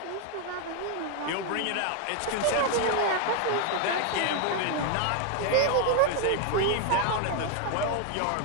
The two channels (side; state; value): both; different; correlation 0.01